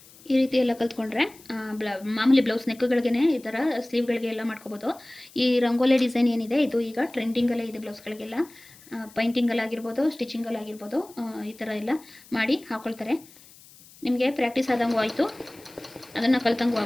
ಈ ರೀತಿ ಎಲ್ಲ ಕಲ್ತ್ಕೊಂಡ್ರೆ ಮಾಮೂಲಿ ಬ್ಲೌಸ್ ನೆಕ್ಗಳಿಗೇ ಈ ಥರ ಸ್ಲೀವ್ಗಳಿಗೆ ಎಲ್ಲ ಮಾಡ್ಕೋಬೋದು. ಈ ರಂಗೋಲಿ ಡಿಸೈನ್ ಏನಿದೆ ಇದು ಈಗ ಟ್ರೆಂಡಿಂಗಲ್ಲೇ ಇದೆ ಬ್ಲೌಸ್ಗಳಿಗೆಲ್ಲ. ಪೈಂಟಿಂಗಲ್ಲಾಗಿರ್ಬೋದು, ಸ್ಟಿಚಿಂಗಲ್ಲಾಗಿರ್ಬೋದು, ಈ ಥರ ಎಲ್ಲ ಮಾಡಿ ಹಾಕ್ಕೊಳ್ತಾರೆ. ನಿಮಗೆ ಪ್ರಾಕ್ಟೀಸ್ ಆದಂಗೂ ಆಯಿತು, ಅದನ್ನು ಕಲ್ತಂಗೂ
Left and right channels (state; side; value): noise; left; hiss, 23 dB below the sound